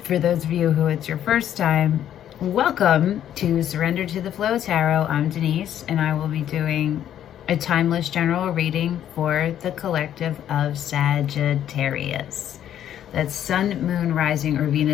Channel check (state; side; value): quieter; right; 10.7 dB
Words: For those of you who it's your first time, welcome to Surrender to the Flow Tarot. I'm Denise, and I will be doing a timeless general reading for the collective of Sagittarius. That's Sun, Moon, Rising, or